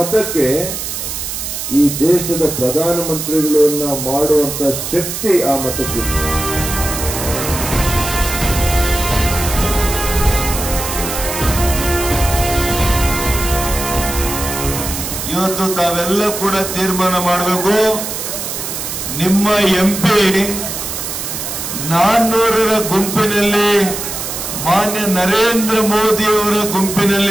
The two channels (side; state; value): right; noise; hiss, 5 dB below the sound